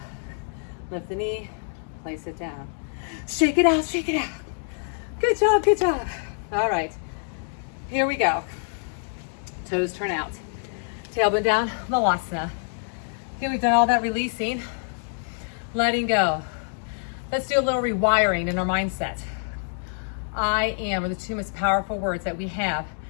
lift the knee, place it down. Shake it out, shake it out. Good job, good job. All right, here we go. Toes turn out. Tailbone down, Malasana. Okay, we've done all that releasing, letting go. Let's do a little rewiring in our mindset. I am are the 2 most powerful words that we have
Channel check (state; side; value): silent; right; digital silence